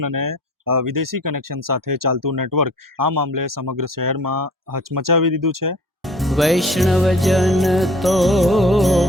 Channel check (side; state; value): both; normal; correlation 0.48